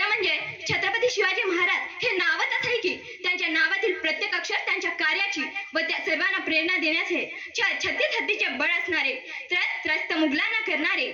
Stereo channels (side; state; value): both; identical; correlation 1.00